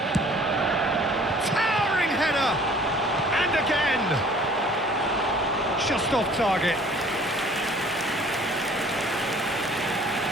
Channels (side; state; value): both; normal; correlation 0.53